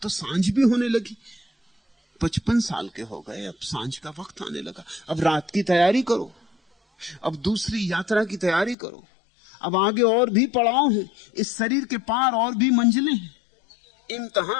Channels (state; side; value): drops out; right; at 8.8 s